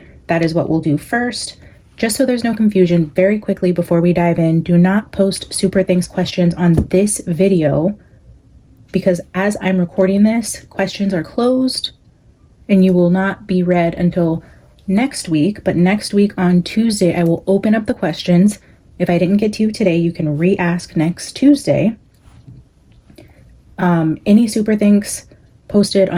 that is what we'll do first. Just so there's no confusion, very quickly before we dive in, do not post super things questions on this video because as I'm recording this, questions are closed and you will not be read until next week. But next week on Tuesday, I will open up the questions. If I didn't get to you today, you can re-ask next Tuesday. Any super thanks posted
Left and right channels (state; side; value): identical; both; correlation 1.00